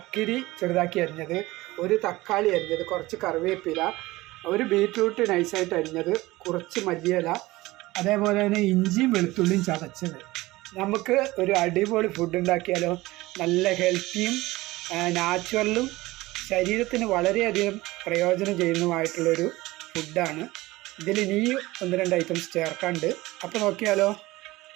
ചെറുതാക്കി അരിഞ്ഞത്, ഒരു തക്കാളി അരിഞ്ഞത്, കുറച്ച് കറിവേപ്പില, ഒരു ബീറ്റ്റൂട്ട് നൈസായിട്ട് അരിഞ്ഞത്, കുറച്ച് മല്ലിയില, അതേപോലെ തന്നെ ഇഞ്ചിയും വെളുത്തുള്ളിയും ചതച്ചത്. നമുക്ക് ഒരു അടിപൊളി ഫുഡ് ഉണ്ടാക്കിയാലോ. നല്ല ഹെൽത്തിയും നാച്ചുറലും ശരീരത്തിന് വളരെയധികം പ്രയോജനം ചെയ്യുന്നതുമായിട്ടുള്ളൊരു ഫുഡാണ്. ഇതിൽ ഇനിയും 1-2 ഐറ്റംസ് ചേർക്കാണ്ട്. അപ്പോൾ നോക്കിയാലോ.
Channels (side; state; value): left; quieter; 19.4 dB